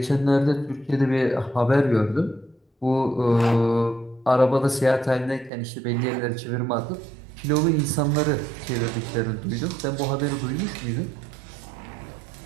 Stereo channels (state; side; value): drops out; left; at 5.5 s